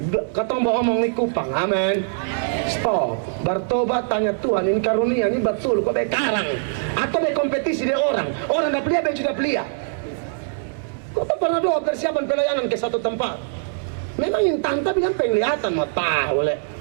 Katong bawa omong di Kupang, amin. Stop, bertobat, tanya Tuhan, ini karunia, ini betul, kok bekarang atau berkompetisi di orang dah pelia, baju dah pelia. Kok tak pernah doa persiapan pelayanan ke satu tempat? Memang yang tanta bilang penglihatan, mau tahu leh.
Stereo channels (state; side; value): silent; left; digital silence